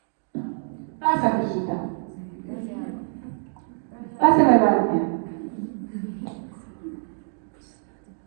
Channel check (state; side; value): silent; left; 61 dB below the other